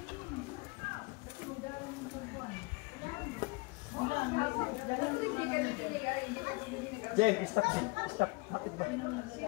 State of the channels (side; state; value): right; quieter; 26.3 dB